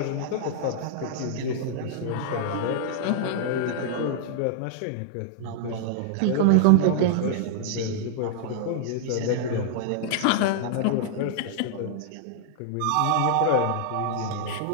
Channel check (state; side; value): different; both; correlation -0.01